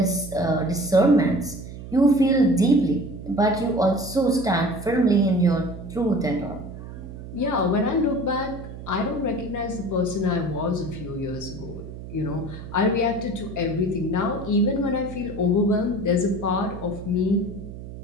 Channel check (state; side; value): noise; right; hum, 12 dB below the sound